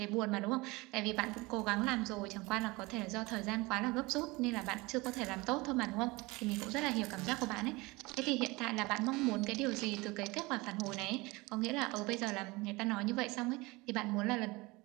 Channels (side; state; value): left; quieter; 23.3 dB